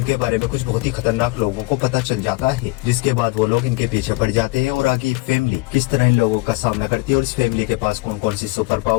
बारे में कुछ बहुत ही खतरनाक लोगों को पता चल जाता है, जिसके बाद वो लोग इनके पीछे पड़ जाते हैं और आगे फैमिली किस तरह इन लोगों का सामना करती है और इस फैमिली के पास कौन कौन सी सुपर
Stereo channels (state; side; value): quieter; right; 22.9 dB